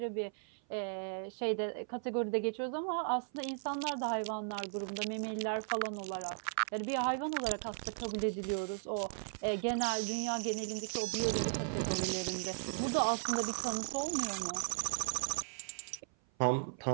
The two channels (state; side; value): silent; left; 53 dB below the other